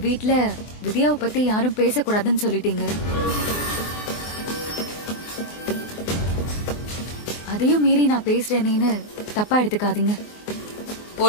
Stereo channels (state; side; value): late; right; 24 ms